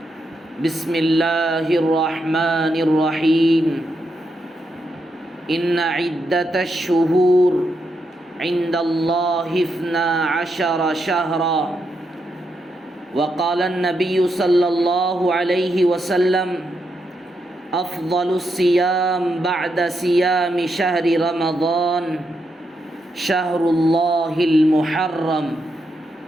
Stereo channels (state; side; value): normal; both; correlation 0.82